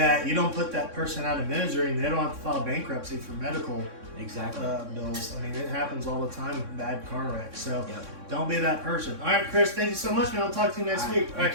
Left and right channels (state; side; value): late; left; 3.6 ms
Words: you don't put that person out of misery and they don't have to file bankruptcy for medical bills. I mean, it happens all the time with bad car wrecks. So don't be that person. All right, Chris, thank you so much, man. I'll talk to you next week. Thank